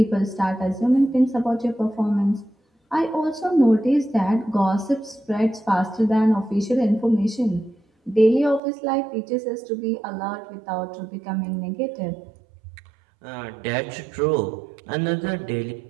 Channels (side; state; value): left; drops out; at 8.6 s